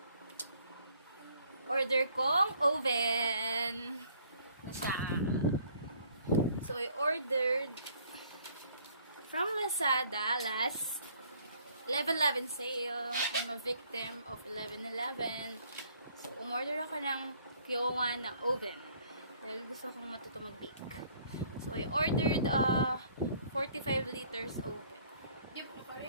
order kong oven. Na siya. So, I ordered from Lazada last 11/11 sale. I'm a victim of 11/11. So, umorder ako ng Kyowa na oven. Dahil gusto kong matuto mag-bake. So, I ordered 45 liters oven. Di mo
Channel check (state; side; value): inverted; both; correlation -0.61